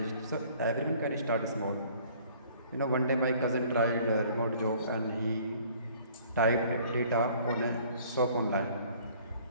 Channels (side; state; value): both; inverted; correlation -0.55